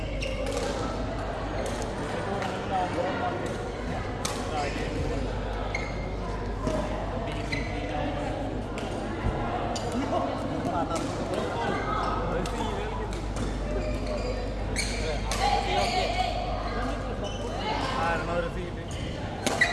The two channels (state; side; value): identical; both; correlation 1.00